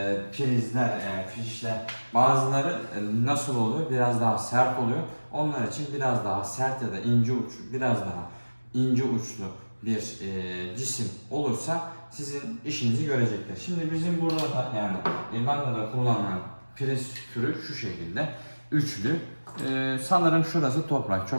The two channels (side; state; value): both; inverted; correlation -1.00